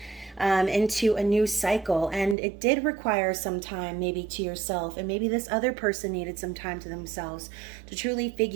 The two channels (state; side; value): drops out; left; at 2.4 s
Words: into a new cycle. And it did require some time maybe to yourself, and maybe this other person needed some time to themselves to truly